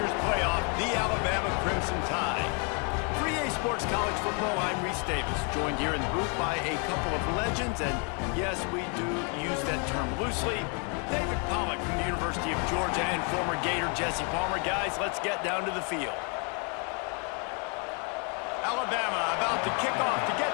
playoff, the Alabama Crimson Tide. For EA Sports College Football, I'm Reese Davis, joined here in the booth by a couple of legends, and yes, we do use that term loosely. David Pollack from the University of Georgia and former Gator Jesse Palmer. Guys, let's get down to the field. Alabama about to kick off to get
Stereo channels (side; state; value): right; quieter; 36.8 dB